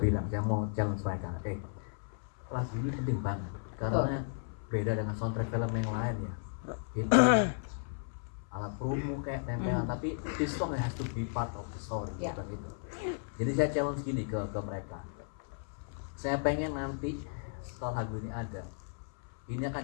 bilang saya mau challenge mereka. Lagu ini penting banget karena beda dengan soundtrack film yang lain ya. Itu alat promo kayak tempelan, tapi this song has to be part of the story gitu. Jadi saya challenge gini ke mereka. Saya pengen nanti setelah lagu ini ada, ini akan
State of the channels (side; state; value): right; silent; 55 dB below the other